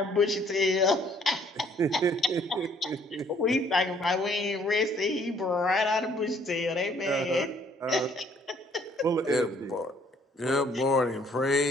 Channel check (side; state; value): both; normal; correlation 0.62